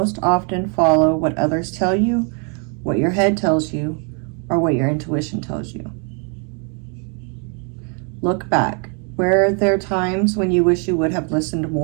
often follow what others tell you, what your head tells you, or what your intuition tells you? Look back. Were there times when you wish you would have listened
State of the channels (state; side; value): quieter; left; 37.6 dB